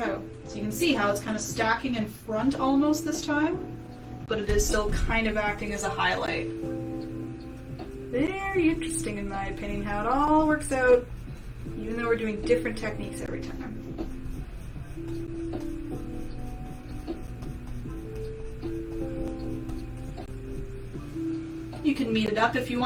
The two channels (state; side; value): identical; both; correlation 1.00